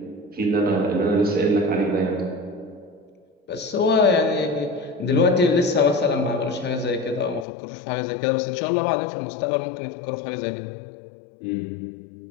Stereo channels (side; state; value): right; drops out; at 7.5 s